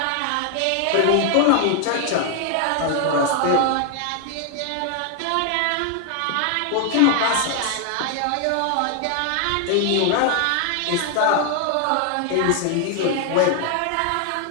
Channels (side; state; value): both; different; correlation 0.00